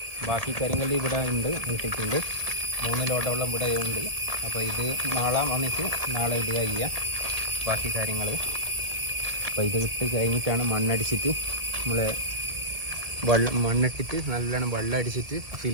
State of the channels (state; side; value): late; left; 1.7 ms